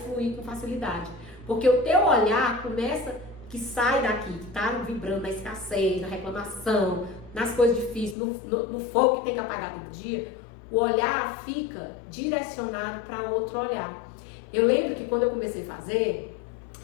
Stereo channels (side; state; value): right; drops out; at 8.2 s